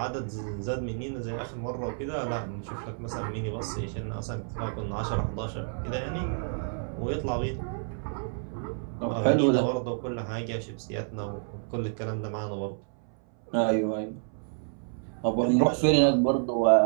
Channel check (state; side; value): silent; left; 58 dB below the other